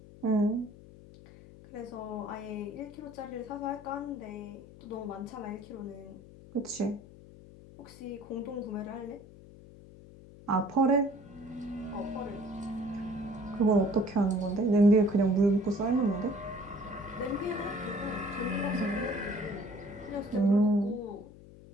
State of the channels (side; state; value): left; noise; hum, 19 dB below the sound